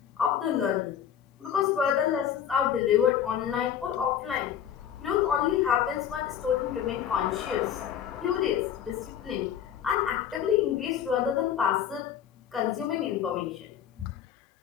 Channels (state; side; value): quieter; right; 9.3 dB